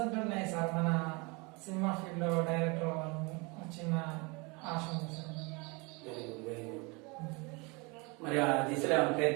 అంటున్నాయి సార్. మన సినిమా ఫీల్డ్ లో డైరెక్టర్ అవ్వాలని చిన్న ఆశ ఉంది sir. Very good, very good. మరి ఆ దిశలో ఏమైనా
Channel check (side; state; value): left; quieter; 28.4 dB